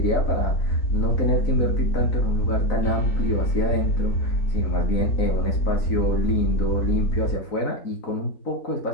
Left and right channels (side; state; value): right; late; 4.0 ms